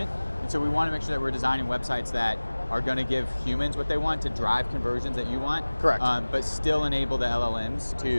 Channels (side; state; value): both; inverted; correlation -1.00